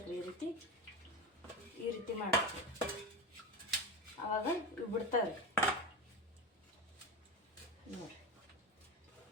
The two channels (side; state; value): both; normal; correlation 0.22